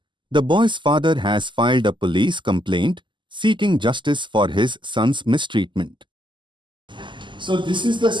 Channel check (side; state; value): left; late; 0.23 ms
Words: the boy's father has filed a police complaint seeking justice for his son's mistreatment. So this is the